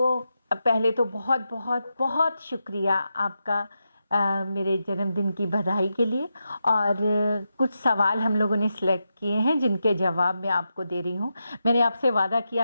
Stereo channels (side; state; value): both; inverted; correlation -0.87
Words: तो बहुत बहुत बहुत शुक्रिया आपका मेरे जन्मदिन की बधाई के लिए। और कुछ सवाल हम लोगों ने सिलेक्ट किए हैं जिनके जवाब मैं आपको दे रही हूँ। मैंने आपसे वादा